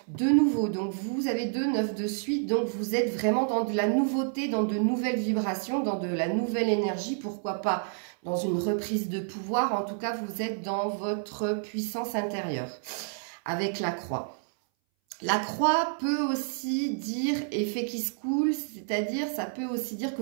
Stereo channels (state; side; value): silent; left; 59 dB below the other